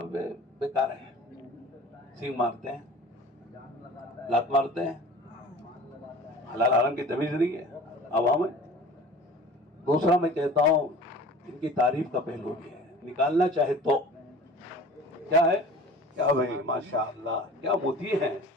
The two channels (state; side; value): normal; both; correlation 0.43